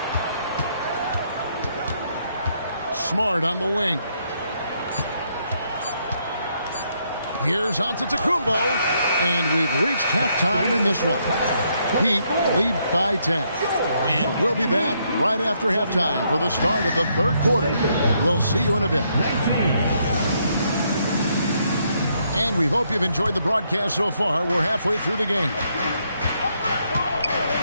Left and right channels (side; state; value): both; inverted; correlation -0.74